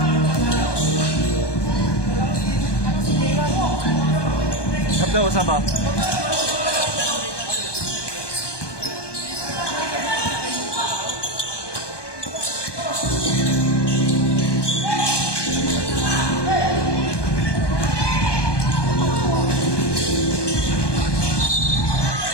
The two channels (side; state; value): right; late; 1.2 ms